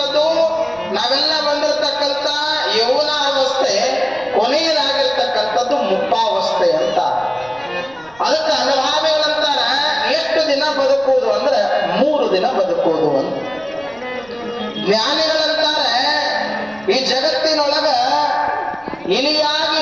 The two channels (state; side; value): noise; right; rumble, 27 dB below the sound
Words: ನಾವೆಲ್ಲ ಬಂದಿರತಕ್ಕಂಥ ಯೌವನ ಅವಸ್ಥೆ, ಕೊನೆಯದಾಗಿರ್ತಕ್ಕಂಥದ್ದು ಮುಪ್ಪಾವಸ್ಥೆ ಅಂತ. ಅದಕ್ಕೆ ಅನುಭಾವಿಗಳಂತಾರ ಎಷ್ಟು ದಿನ ಬದುಕುವುದು ಅಂದ್ರೆ 3 ದಿನ ಬದುಕುವುದು ಅಂತ. ಜ್ಞಾನಿಗಳಂತಾರೆ ಈ ಜಗತ್ತಿನೊಳಗ ಇಲಿಯಾಗಿ